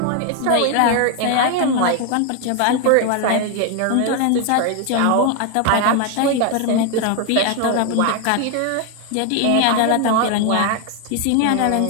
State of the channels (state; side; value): different; both; correlation 0.01